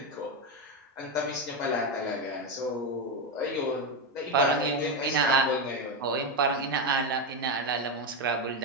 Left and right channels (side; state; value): both; normal; correlation 0.09